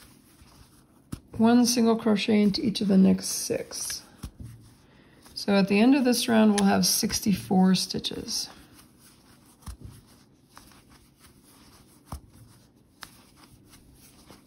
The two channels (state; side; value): identical; both; correlation 1.00